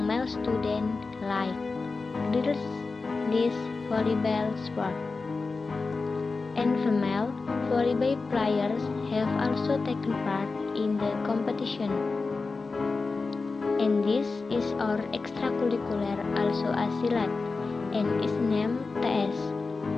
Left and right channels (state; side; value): quieter; right; 4.1 dB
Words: male students like girls this volleyball sport. And female volleyball players have also taken part in the competition. And this is our extracurricular also a silat and is named TS